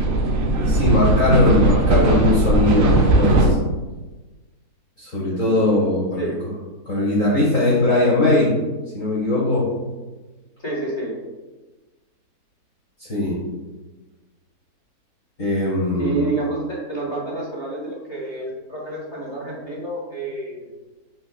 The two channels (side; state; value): right; late; 3.9 ms